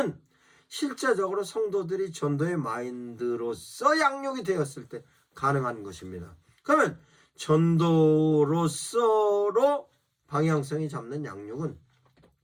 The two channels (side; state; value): both; identical; correlation 1.00